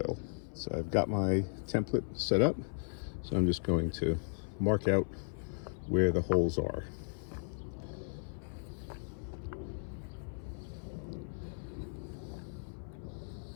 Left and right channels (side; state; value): right; silent; 54 dB below the other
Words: So I've got my template set up, so I'm just going to mark out where the holes are.